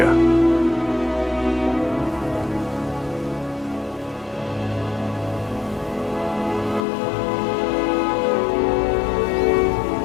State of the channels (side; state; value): right; drops out; at 6.9 s